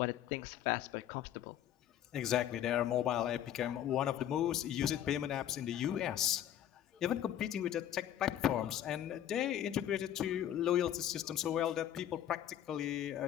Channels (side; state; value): right; quieter; 11.0 dB